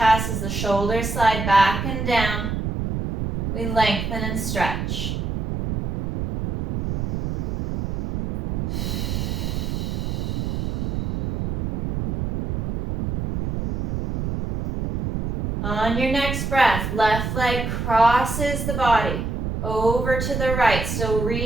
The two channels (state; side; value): noise; right; rumble, 2 dB below the sound